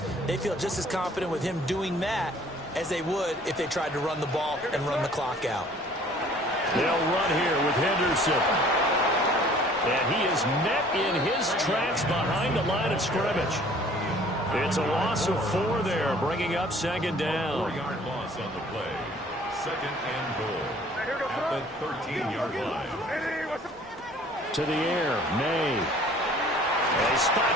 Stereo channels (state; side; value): normal; both; correlation 0.53